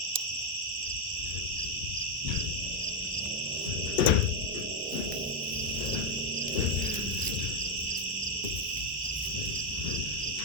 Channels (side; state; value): both; normal; correlation 0.03